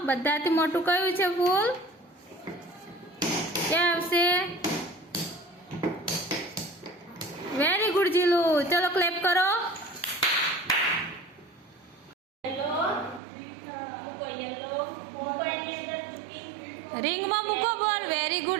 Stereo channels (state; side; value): drops out; left; at 13.2 s